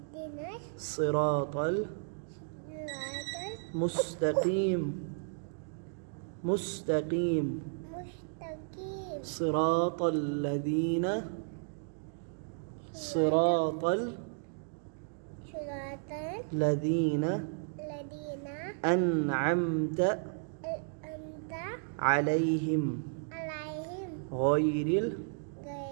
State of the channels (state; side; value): silent; left; digital silence